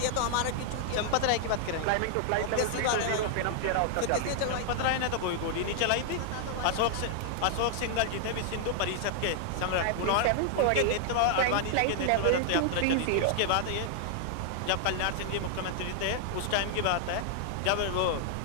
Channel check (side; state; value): both; different; correlation 0.00